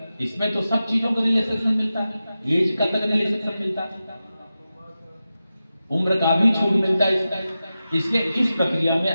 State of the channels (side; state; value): both; inverted; correlation -0.93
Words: इसमें तो सब चीजों का रिलैक्सेशन मिलता है, एज का तक रिलैक्सेशन मिलता है, उम्र का भी छूट मिलता है। इसलिए इस प्रक्रिया